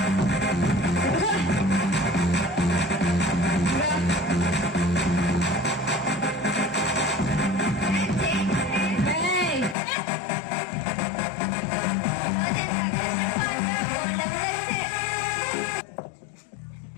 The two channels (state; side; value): drops out; right; at 9.8 s